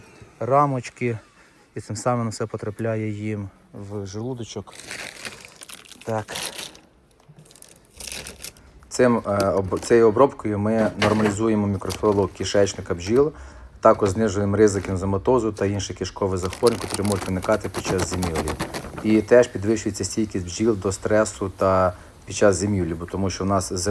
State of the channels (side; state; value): both; identical; correlation 1.00